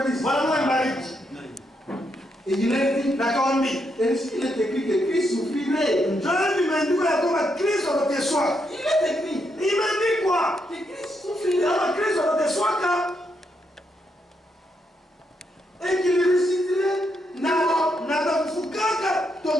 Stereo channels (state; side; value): normal; both; correlation 0.79